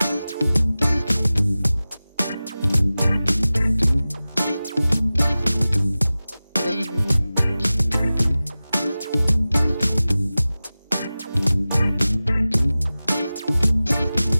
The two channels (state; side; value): inverted; both; correlation -0.97